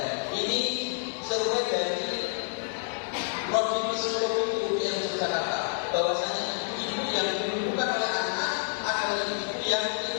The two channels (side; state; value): right; silent; digital silence